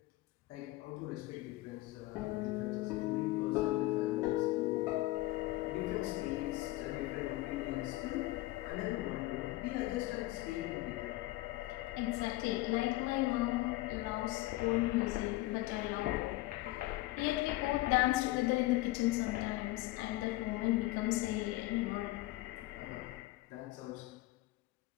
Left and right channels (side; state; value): right; quieter; 18.6 dB